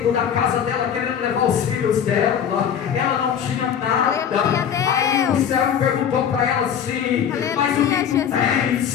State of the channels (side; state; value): right; quieter; 8.4 dB